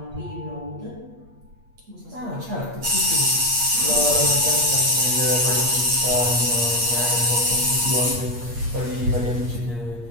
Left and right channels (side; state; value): left; late; 8.4 ms